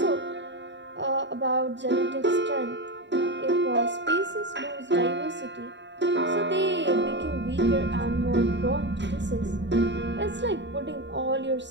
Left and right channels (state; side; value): late; left; 0.52 ms